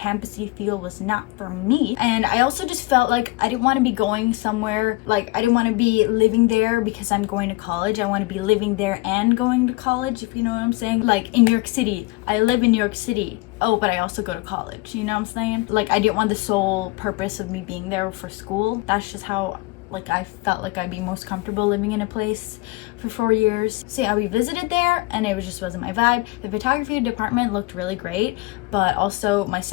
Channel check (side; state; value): right; quieter; 22.2 dB